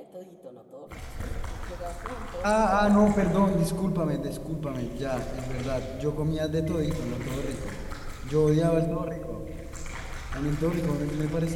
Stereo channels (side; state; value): both; identical; correlation 1.00